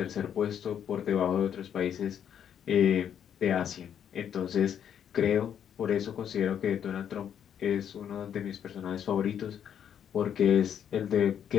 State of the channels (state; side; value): quieter; right; 8.9 dB